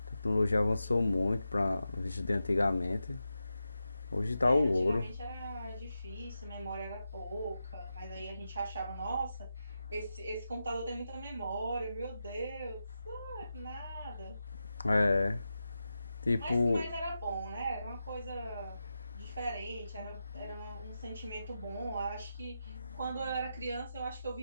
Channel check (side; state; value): both; inverted; correlation -0.89